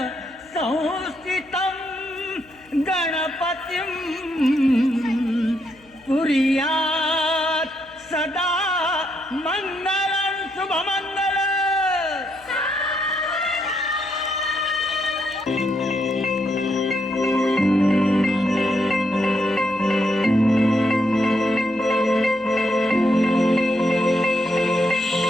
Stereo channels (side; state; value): left; noise; hum, 29 dB below the sound